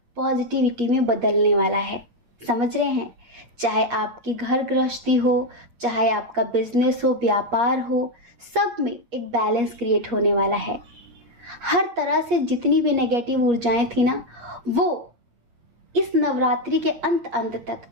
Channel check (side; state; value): left; late; 8.4 ms